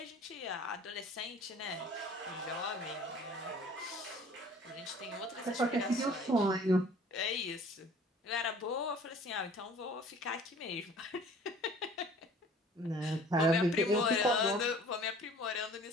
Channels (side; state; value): both; normal; correlation 0.50